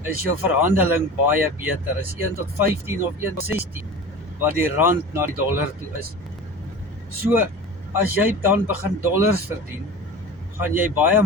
is jou verhandeling baie beter. Is 1 tot 15 of 1 tot 16 wat die rand na die dollar toe is. So, as jy dan begin dollars verdien, gaan jy baie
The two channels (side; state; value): both; normal; correlation 0.35